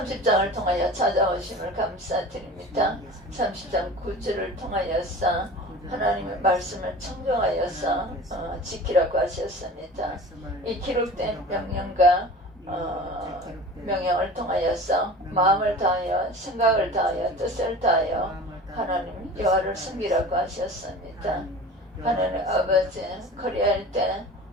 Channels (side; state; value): both; normal; correlation 0.38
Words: 통하여 찾아오심을 감사드립니다. 30장 9절을 통하여서 하나님의 말씀을 청정하여서 지키라고 하셨습니다. 이 기록된 명령과 명령을 통하여서 마음을 다하여 생각을 다하여 뜻을 다하여 하나님 여호와를 섬기라고 하셨습니다. 하나님 아버지 그리할 때